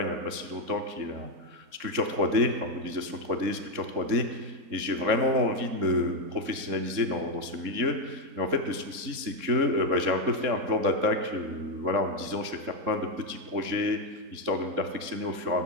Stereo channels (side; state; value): left; late; 3.7 ms